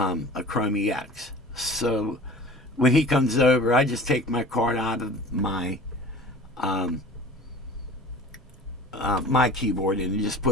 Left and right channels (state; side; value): normal; both; correlation 0.41